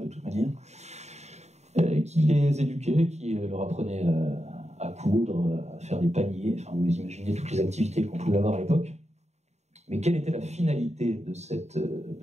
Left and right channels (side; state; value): left; late; 0.32 ms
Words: de toute manière, qui les éduquait, qui leur apprenait à coudre, à faire des paniers, enfin vous imaginez toutes les activités qu'on pouvait avoir à l'époque. Mais quelle était la finalité de